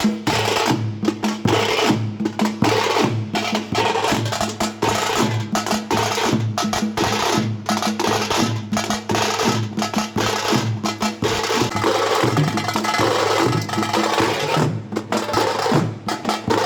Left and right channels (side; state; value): both; identical; correlation 1.00